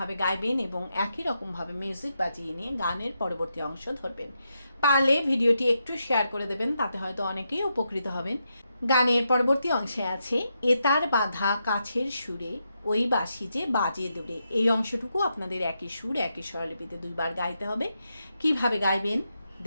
গাইবেন এবং একই রকমভাবে মিউজিক বাজিয়ে নিয়ে গানের পরবর্তী অংশ ধরবেন। পারলে ভিডিওটি একটু শেয়ার করে দেবেন, তাতে হয়তো অনেকেই উপকৃত হবেন। গানের পরবর্তী অংশে আছে এতার বাঁধা কাছের সুরে ওই বাঁশি যে বাজে দূরে। এই অংশটুকু আপনাদের একই সুর একই স্বরলিপিতে দুইবার গাইতে হবে। কিভাবে গাইবেন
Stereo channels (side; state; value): both; inverted; correlation -0.84